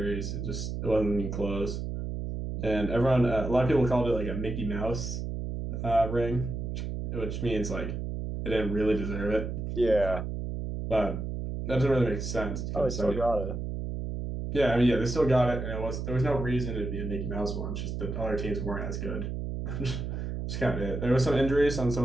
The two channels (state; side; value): noise; right; hum, 4 dB below the sound